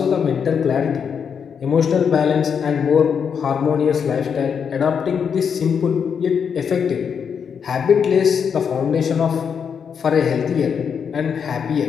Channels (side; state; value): right; quieter; 7.0 dB